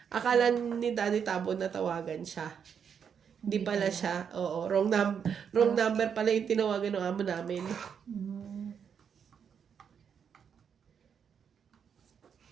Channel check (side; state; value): left; quieter; 7.3 dB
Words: akala ni Daddy Tabo na tawagan siya. Hindi pala siya. Oo, wrong number pala yung tinawagan ng amo namin. Mm.